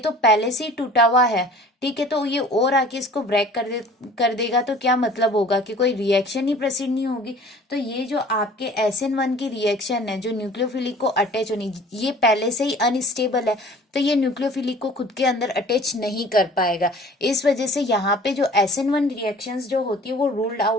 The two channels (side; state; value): both; normal; correlation 0.47